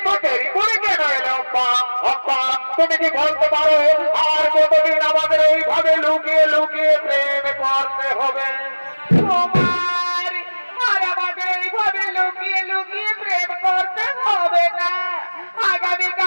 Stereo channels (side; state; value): both; inverted; correlation -1.00